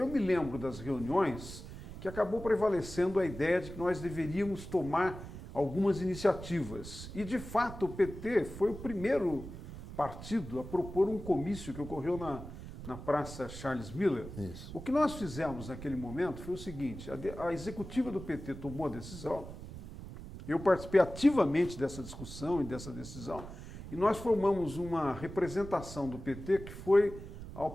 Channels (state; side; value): noise; right; rumble, 11 dB below the sound